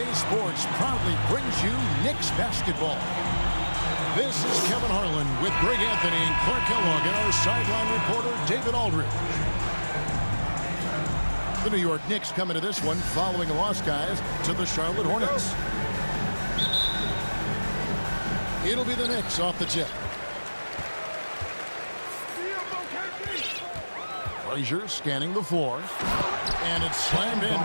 proudly brings you Knicks basketball. This is Kevin Harlan with Greg Anthony and Clark Kellogg and our sideline reporter David Aldridge. The New York Knicks come into this one following a loss, guys, to the Charlotte Hornets. It'll be the Knicks off the tip. Frazier scanning the floor, and it's slammed in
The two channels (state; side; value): inverted; both; correlation -1.00